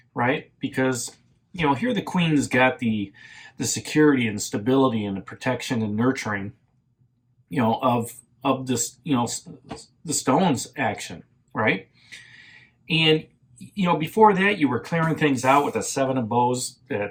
right? Because, here the Queen's got the security and stability and the protection and nurturing, of this, the Stones action, right? And before that, you were clearing things out with a Seven of Bows,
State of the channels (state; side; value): identical; both; correlation 1.00